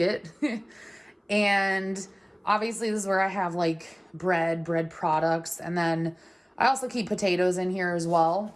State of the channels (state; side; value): identical; both; correlation 1.00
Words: And obviously this is where I have like bread products. And then I also keep potatoes in here as well.